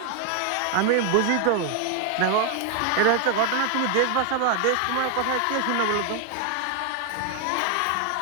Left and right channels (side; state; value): both; different; correlation 0.00